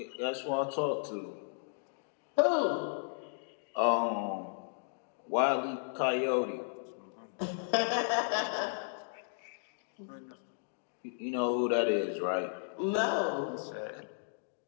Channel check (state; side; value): silent; right; digital silence